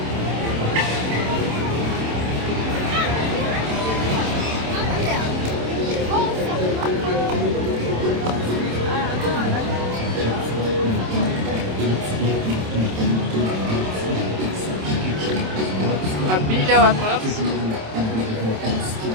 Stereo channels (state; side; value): late; left; 27 ms